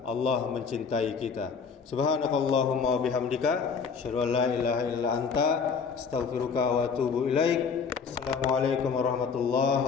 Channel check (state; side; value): quieter; right; 5.7 dB